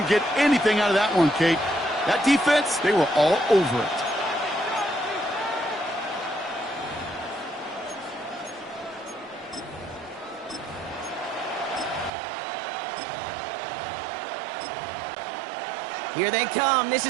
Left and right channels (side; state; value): left; drops out; at 12.1 s